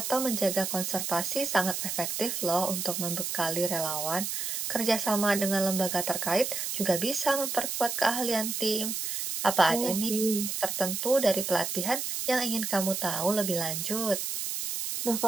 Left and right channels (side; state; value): right; noise; hiss, 3 dB below the sound